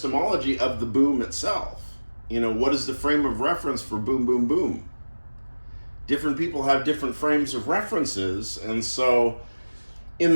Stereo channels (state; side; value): inverted; both; correlation -1.00